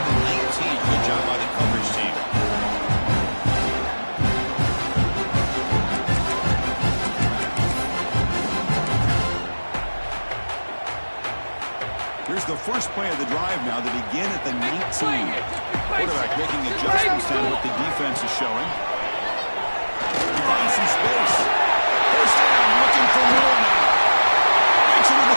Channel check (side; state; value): both; inverted; correlation -1.00